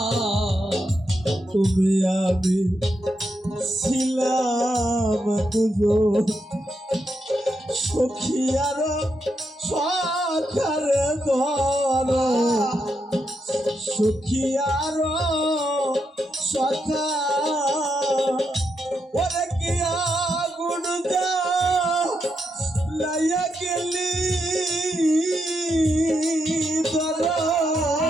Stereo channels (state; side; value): normal; both; correlation 0.83